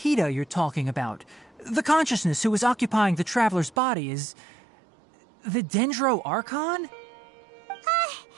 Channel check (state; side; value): drops out; left; at 3.8 s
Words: you're talking about, the consciousness who was occupying the Traveler's body, is the Dendro Archon?